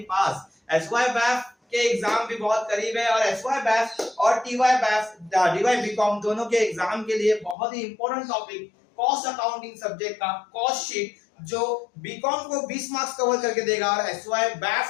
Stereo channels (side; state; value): right; drops out; at 7.6 s